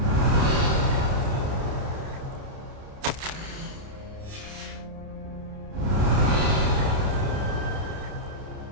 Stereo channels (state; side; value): late; left; 29 ms